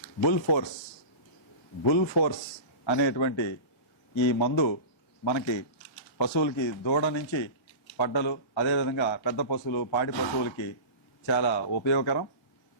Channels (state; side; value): late; right; 1.4 ms